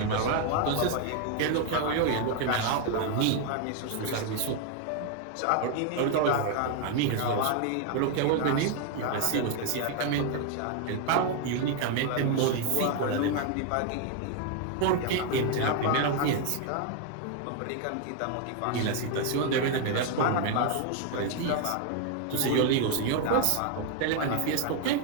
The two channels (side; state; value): both; different; correlation 0.00